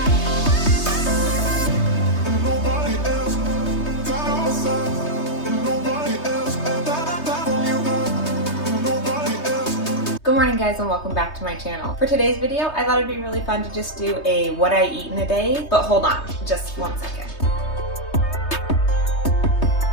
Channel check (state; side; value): late; right; 3.2 ms